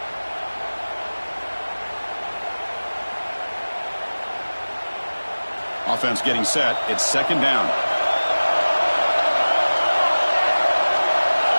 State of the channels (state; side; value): inverted; both; correlation -1.00